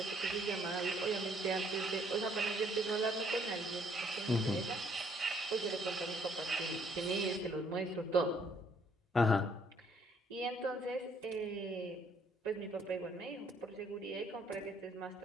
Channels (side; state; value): both; normal; correlation 0.65